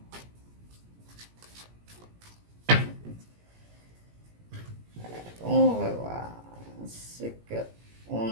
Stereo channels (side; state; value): left; late; 17 ms